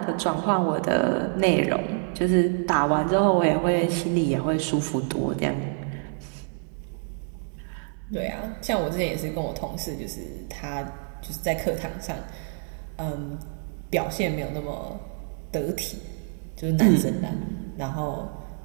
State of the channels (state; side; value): silent; left; 58 dB below the other